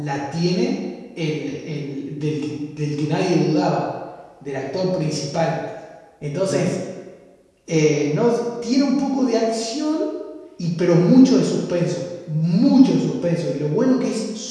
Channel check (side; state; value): both; identical; correlation 1.00